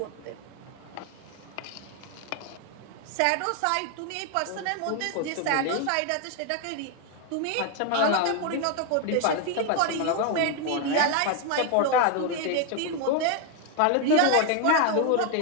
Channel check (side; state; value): both; different; correlation 0.01